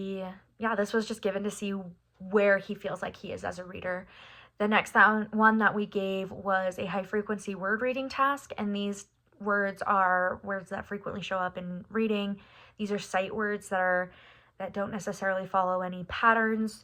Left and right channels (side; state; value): both; identical; correlation 1.00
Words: was just given to see where he feels like he is as a reader. The next one that we gave was a high frequency word reading task, and these words are words that frequently show up in reading. These are sight words that don't necessarily follow any